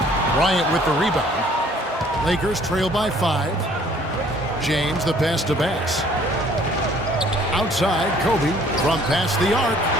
Bryant with the rebound. Lakers trail by 5. James the pass to Bass. Outside, Kobe from past the arc.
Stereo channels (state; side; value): normal; both; correlation 0.58